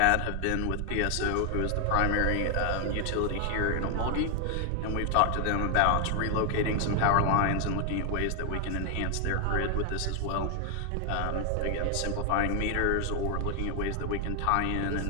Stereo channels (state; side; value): different; both; correlation 0.00